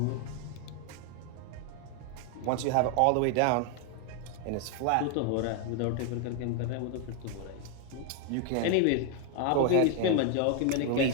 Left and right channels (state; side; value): different; both; correlation 0.01